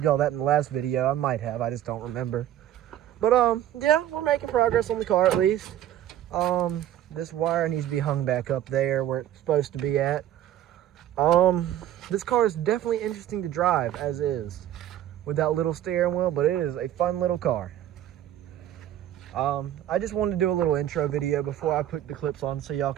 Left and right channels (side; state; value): left; quieter; 12.0 dB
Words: y'all that in the last video. I might have, I just don't remember. But yeah, we're making progress on the car at least. This wire needs to be hung back up there where it's supposed to be at. This car is definitely interesting to drive as is, with that little steering wheel, but it is a fun little car. I just wanted to do a little intro video before I put the clips on, so y'all